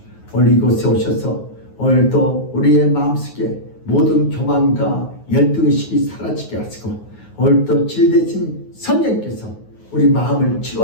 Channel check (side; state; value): right; late; 9.4 ms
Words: 오늘 이곳에 오셔서 오늘도 우리의 마음속에 모든 교만과 열등의식이 사라지게 하시고 오늘도 진대신 성령께서 우리 마음을